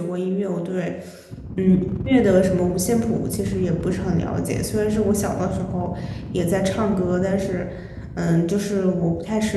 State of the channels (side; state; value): both; identical; correlation 1.00